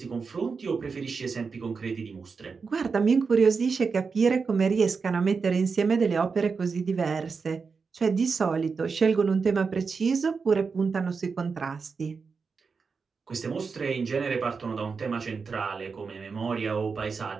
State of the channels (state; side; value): quieter; left; 5.1 dB